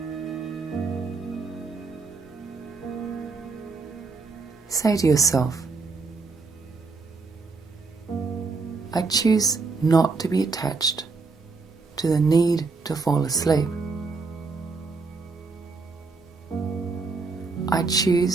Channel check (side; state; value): left; quieter; 4.1 dB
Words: Say to yourself, I choose not to be attached to the need to fall asleep. I